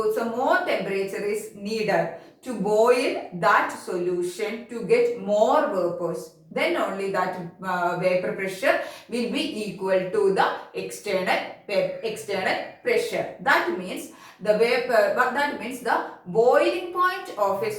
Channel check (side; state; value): both; identical; correlation 1.00